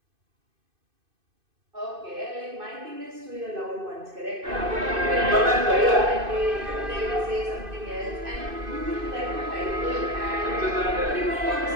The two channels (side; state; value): left; late; 2.5 ms